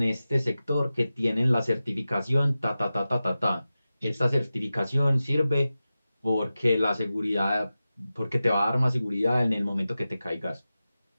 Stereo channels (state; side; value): inverted; both; correlation -0.94